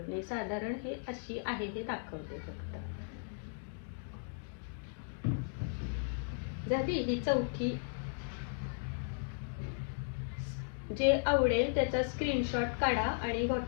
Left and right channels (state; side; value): silent; right; digital silence